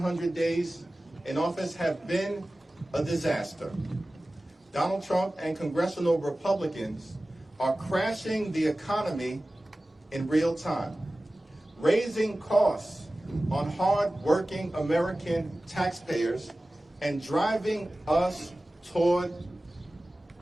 days in office have been a disaster. Donald Trump and congressional Republicans are crashing the economy in real time, raising costs on hard-working American taxpayers and driving us toward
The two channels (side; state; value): both; normal; correlation 0.96